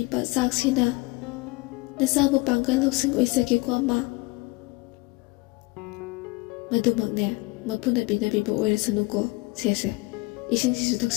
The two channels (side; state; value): right; quieter; 23.8 dB